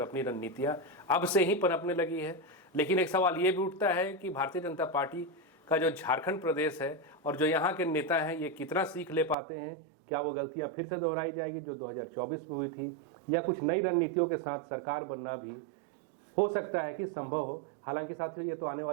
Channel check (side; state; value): left; drops out; at 9.3 s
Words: अपनी रणनीतियां अब से ही पनपने लगी है। लेकिन एक सवाल ये भी उठता है कि भारतीय जनता पार्टी का जो झारखंड प्रदेश है और जो यहाँ के नेता हैं, ये कितना सीख ले पाते हैं। क्या वो गलतियाँ फिर से दोहराई जाएगी जो 2024 में हुई थी, या कुछ नई रणनीतियों के साथ सरकार बनना भी हो सकता है कि संभव हो। हालांकि साथियों ये तो आने